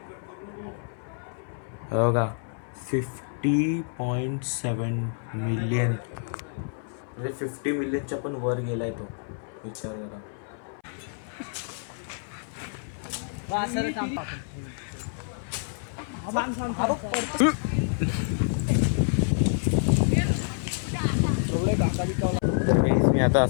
हो का? 50.7 मिलियन, म्हणजे 50 मिलियनच्या पण वर गेलाय तो. विचार करा. मी आता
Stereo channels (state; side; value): silent; right; 59 dB below the other